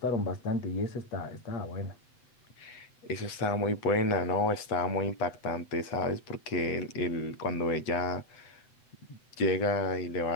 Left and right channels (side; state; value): right; late; 8.2 ms